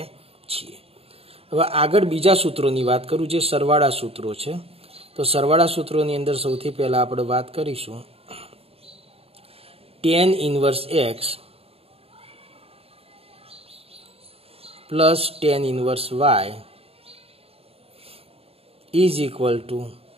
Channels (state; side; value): late; left; 0.28 ms